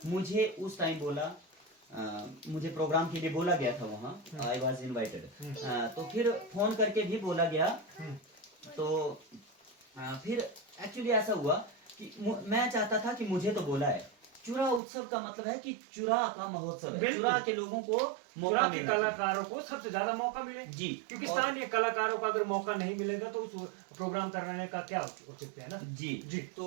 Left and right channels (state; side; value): drops out; left; at 14.8 s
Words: मुझे उस टाइम बोला, मुझे प्रोग्राम के लिए बोला गया था वहाँ, आई वॉज इन्वाइटेड, तो फिर फोन करके भी बोला गया। तो फिर एक्चुअली ऐसा हुआ कि मैं चाहता था कि मुझे तो बोला है, चुरा उत्सव का मतलब है कि चुरा का महोत्सव है, चुरा के लोगों को मौका मिले, कलाकारों को सबसे ज्यादा मौका मिले जी, क्योंकि स्थानीय कलाकारों को अगर मौका नहीं मिलेगा तो उस प्रोग्राम करने का क्या उचित है ना? जी जी।